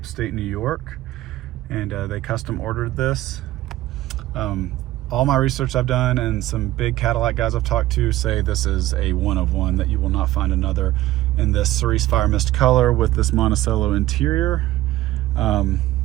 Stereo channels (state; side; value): quieter; left; 15.7 dB